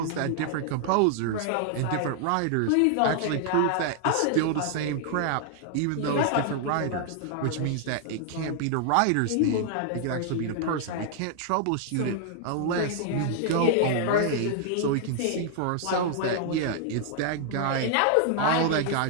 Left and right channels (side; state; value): both; different; correlation 0.00